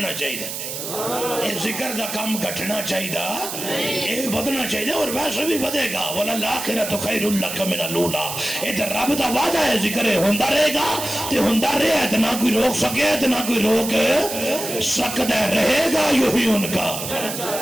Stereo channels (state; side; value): noise; right; hiss, 6 dB below the sound